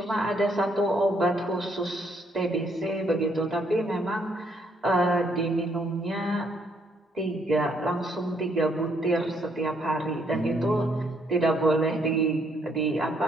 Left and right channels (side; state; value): both; normal; correlation 0.70